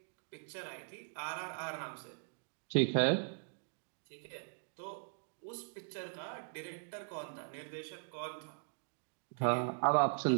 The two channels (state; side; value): silent; left; digital silence